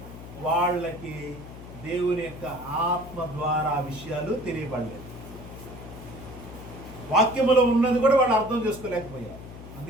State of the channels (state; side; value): noise; left; hum, 14 dB below the sound